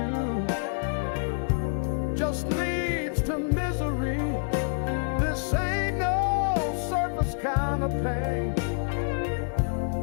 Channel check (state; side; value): silent; right; digital silence